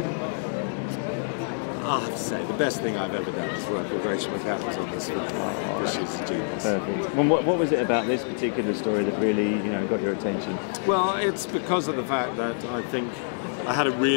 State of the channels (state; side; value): silent; right; 57 dB below the other